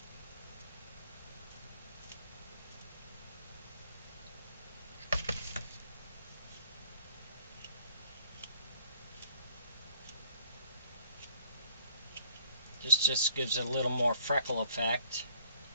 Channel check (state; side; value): inverted; both; correlation -0.61